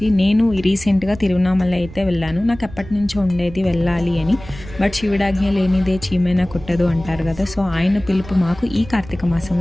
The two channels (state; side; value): noise; right; rumble, 16 dB below the sound